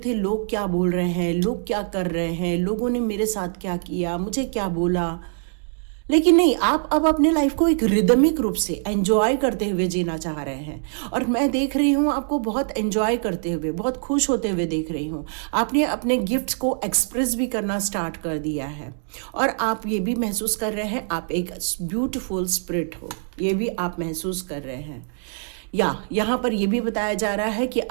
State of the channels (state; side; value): silent; left; digital silence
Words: लोग क्या बोल रहे हैं, लोग क्या कर रहे हैं, लोगों ने मेरे साथ क्या किया, मुझे क्या बोला। लेकिन नहीं, आप अब अपने लाइफ को एक रिदमिक रूप से एंजॉय करते हुए जीना चाह रहे हैं। और मैं देख रही हूँ आपको बहुत एंजॉय करते हुए, बहुत खुश होते हुए देख रही हूँ। आपने अपने गिफ्ट्स को एक्सप्रेस भी करना स्टार्ट कर दिया है और आप ये भी महसूस कर रहे हैं आप एक ब्यूटीफुल स्पिरिट हो, ये भी आप महसूस कर रहे हैं। या यहाँ पर यह भी बताया जा रहा है कि